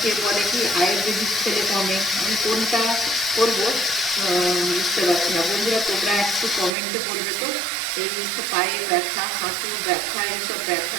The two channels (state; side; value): drops out; left; at 6.7 s